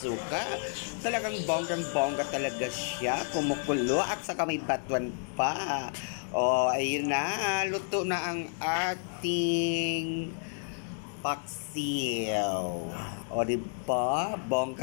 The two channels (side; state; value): right; silent; 57 dB below the other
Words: Talagang bonggang-bongga talaga siya, kumukulo at saka may batuan pa. O, ayun na, luto na ang ating paksiw. O, diba?